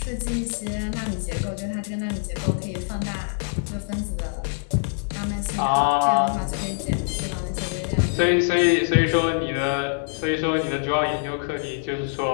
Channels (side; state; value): right; silent; 62 dB below the other